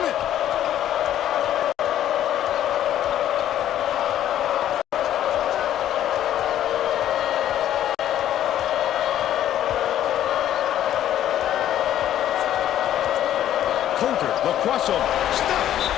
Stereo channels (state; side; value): quieter; right; 11.6 dB